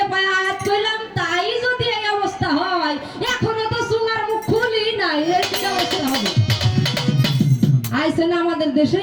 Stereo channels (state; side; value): identical; both; correlation 1.00